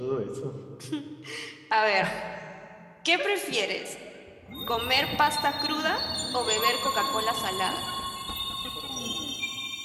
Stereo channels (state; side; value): identical; both; correlation 1.00